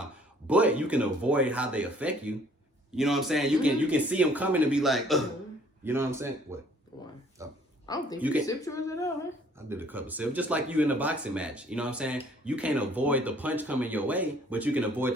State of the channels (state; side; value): normal; both; correlation 0.59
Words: But you can avoid how they affect you. You know what I'm saying? You can see them coming and be like, you know what I'm saying? What? Why? I don't think you can sip yours at all, huh? I did a couple sips, just like you in a boxing match. You know what I'm saying? You can't avoid the punch coming your way, but you can avoid